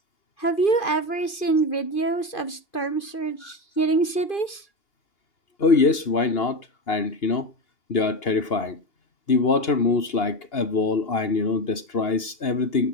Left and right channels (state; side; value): late; right; 2.8 ms